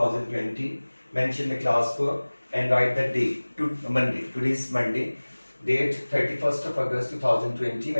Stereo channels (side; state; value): both; inverted; correlation -1.00